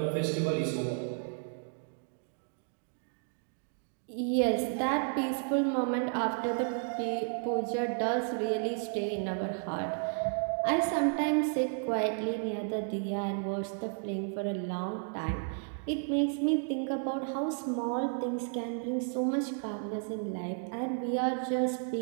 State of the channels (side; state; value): left; silent; 56 dB below the other